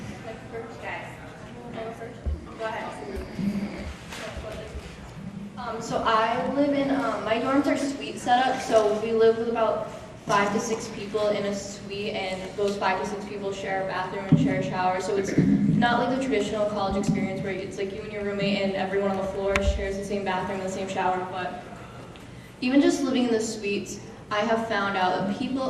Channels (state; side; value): identical; both; correlation 1.00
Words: Go ahead. So I live in, my dorms are suite setup, so we live with about 5 to 6 people in a suite, and those 5 to 6 people share a bathroom and share a shower, so it's not like the traditional college experience where it's like you and your roommate and everyone on the floor shares the same bathroom and the same shower, but even just living in the suites, I have found out that people